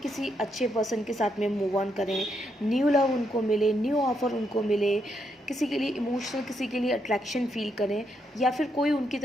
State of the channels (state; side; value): normal; both; correlation 0.78